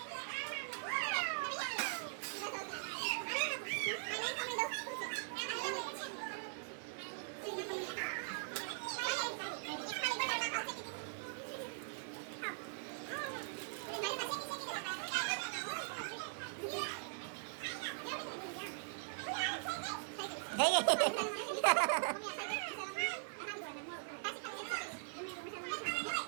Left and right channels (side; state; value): left; silent; digital silence